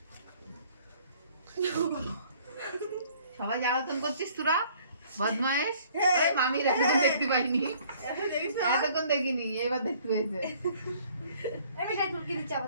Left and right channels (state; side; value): inverted; both; correlation -0.58